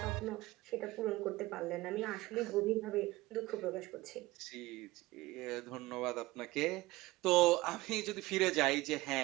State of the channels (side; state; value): left; quieter; 19.5 dB